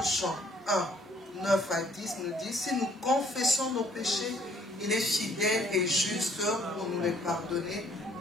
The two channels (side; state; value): both; normal; correlation 0.62